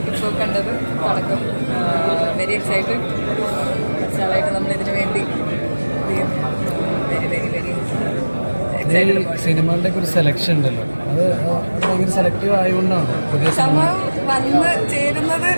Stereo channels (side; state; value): both; inverted; correlation -1.00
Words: ഇപ്പോൾ കണ്ടത്. തുടക്കം വെരി എക്സൈറ്റഡ്. കുറച്ചാളായിട്ട് നമ്മളിതിനു വേണ്ടി വെരി വെരി വെരി എക്സൈറ്റഡ്. സിനിമകളുടെ ഒരു സെലക്ഷൻ ഉണ്ടല്ലോ, അത് ഭയങ്കര സെലക്റ്റീവ് ആയതുകൊണ്ടാണ് പുതിയ സമയം വന്ന് ചേരുന്നത്.